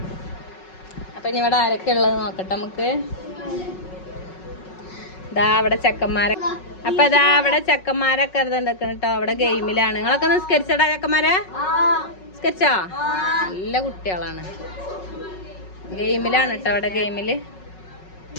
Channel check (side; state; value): right; late; 5.4 ms